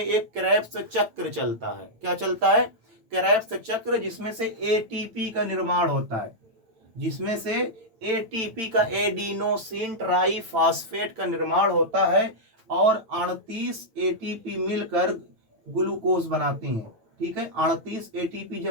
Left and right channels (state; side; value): late; left; 8.9 ms